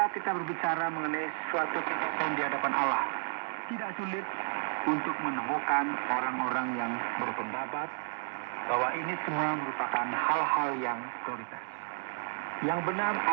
kita berbicara mengenai suatu kesaksian di hadapan Allah, tidak sulit untuk menemukan orang-orang yang berpendapat bahwa ini semua merupakan hal-hal yang prioritas. Yang benar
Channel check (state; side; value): silent; left; 56 dB below the other